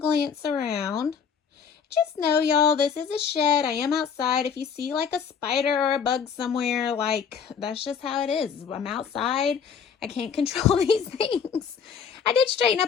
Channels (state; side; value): quieter; right; 6.9 dB